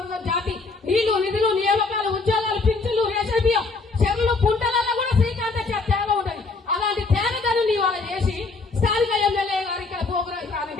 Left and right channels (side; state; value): right; quieter; 3.9 dB